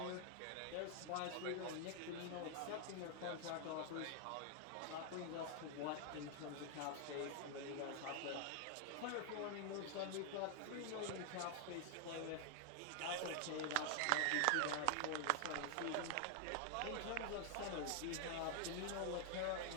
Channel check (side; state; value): both; different; correlation 0.00